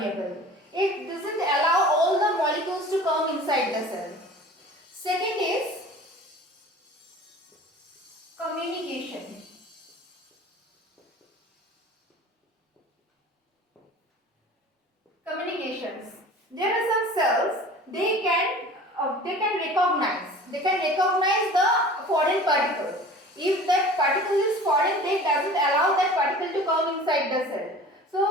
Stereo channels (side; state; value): both; normal; correlation 0.42